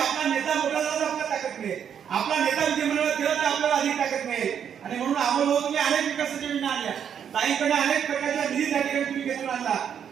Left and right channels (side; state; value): left; quieter; 8.3 dB